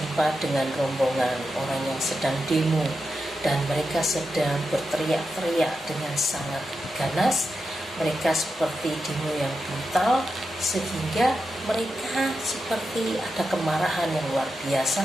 dengan rombongan orang yang sedang demo, dan mereka sedang berteriak-teriak dengan sangat ganas. Mereka seperti demo yang brutal, sehingga mereka seperti ada kemarahan yang luar biasa,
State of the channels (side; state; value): both; normal; correlation 0.88